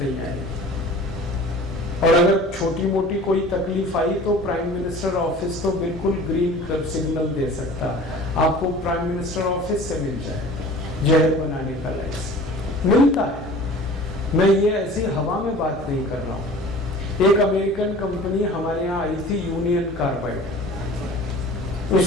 आएगी। और अगर छोटी मोटी कोई तकलीफ आई तो प्राइम मिनिस्टर ऑफिस तो बिल्कुल ग्रीन सिग्नल दे सकता है, आपको प्राइम मिनिस्टर ऑफिस से मिल जाएगा जहर बनाने का लाइसेंस, मिलता है। मैं ये ऐसी हवा में बात नहीं कर रहा हूँ। एक अमेरिकन कंपनी हमारे यहाँ आई थी, यूनियन कार्बाइड,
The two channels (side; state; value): both; normal; correlation 0.43